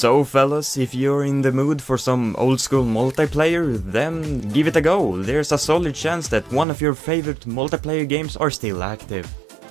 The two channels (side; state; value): left; drops out; at 6.7 s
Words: fellas, if you're in the mood for some old school multiplayer, then give it a go. There's a solid chance that one of your favorite multiplayer games are still active.